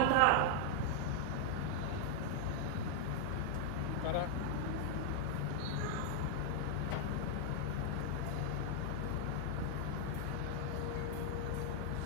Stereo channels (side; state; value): both; different; correlation 0.00